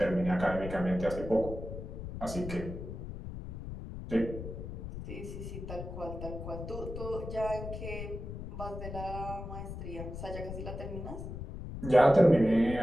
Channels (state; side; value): noise; left; rumble, 8 dB below the sound